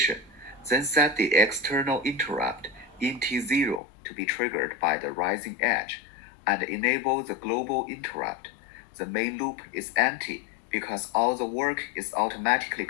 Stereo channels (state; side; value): drops out; right; at 3.8 s